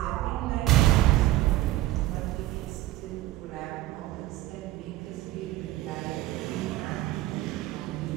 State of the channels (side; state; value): left; quieter; 15.8 dB